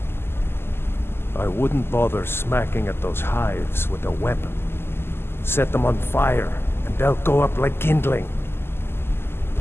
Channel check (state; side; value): late; right; 0.12 ms